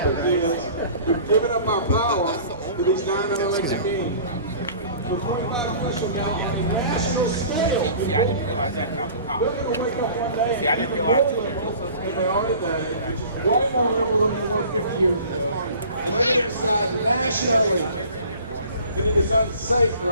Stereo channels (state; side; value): inverted; both; correlation -0.46